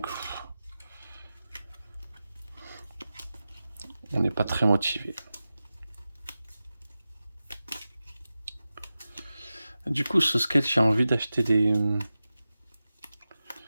On n'est pas très motivé. Du coup, ce sketch, j'ai envie d'acheter des...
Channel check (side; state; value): both; inverted; correlation -0.94